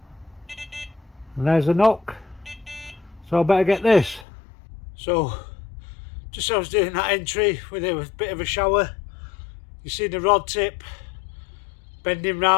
And there's a knock. So I better get this. So, just as I was doing that entry with a bit of a shower, you see the rod tip bending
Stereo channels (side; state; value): right; drops out; at 4.2 s